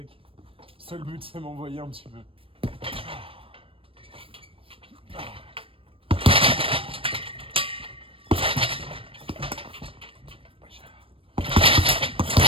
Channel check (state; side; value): late; left; 0.26 ms